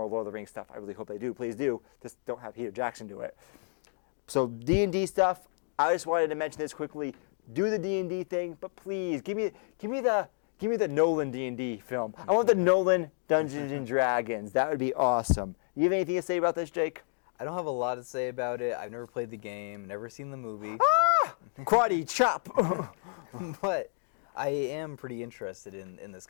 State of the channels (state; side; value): silent; right; 57 dB below the other